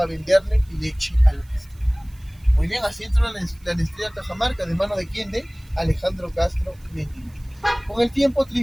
venderle leche a la Nestlé. Muy bien, así entró la Nestlé a Cajamarca, ¿de mano de quién? De Alejandro Castro Medina. Con el tiempo,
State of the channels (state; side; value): noise; right; hiss, 30 dB below the sound